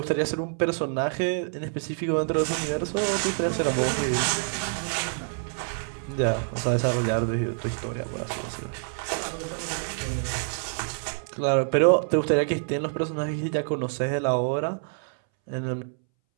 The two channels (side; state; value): left; silent; 60 dB below the other